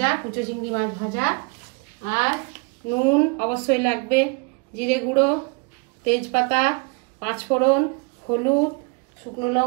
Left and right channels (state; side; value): quieter; left; 32.3 dB